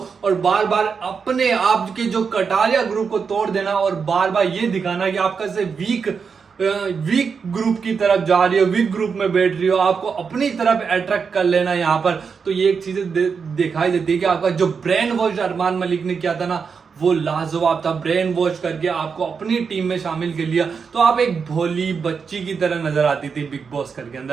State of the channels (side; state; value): left; quieter; 5.8 dB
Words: और बार बार अपने आप के जो कटारिया ग्रुप को तोड़ देना, और बार बार ये दिखाना कि आप कैसे वीक ग्रुप की तरफ जा रही हो, वीक ग्रुप में बैठ रही हो, आपको अपनी तरफ अट्रैक्ट कर लेना यहाँ पर। तो ये एक चीज दिखाई देती है कि आपका जो ब्रेन वॉश अरमान मलिक ने किया था ना, वो लाजवाब था। ब्रेन वॉश करके आपको अपनी टीम में शामिल कर लिया, तो आप एक भोली बच्ची की तरह नजर आती थी बिग बॉस घर के